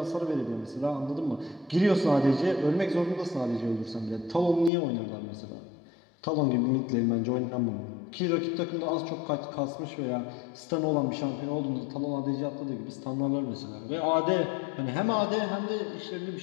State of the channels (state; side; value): drops out; right; at 4.7 s